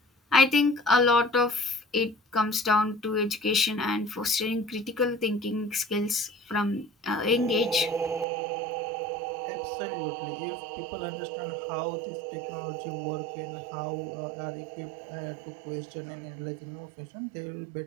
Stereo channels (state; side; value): drops out; left; at 8.2 s